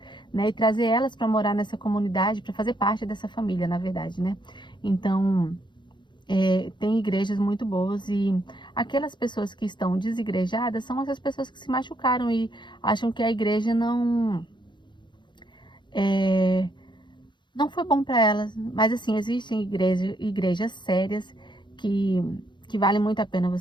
né? E trazer elas para morar nessa comunidade, para fazer parte dessa família, na verdade, né? Então, tem igrejas muito boas e aquelas pessoas que estão desigrejadas são essas pessoas que se machucaram e acham que a igreja não foi bom para elas. Mas assim, existem igrejas sérias que, que vale muito a pena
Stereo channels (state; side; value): late; right; 0.22 ms